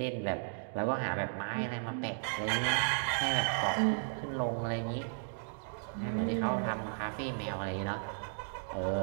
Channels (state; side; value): silent; left; digital silence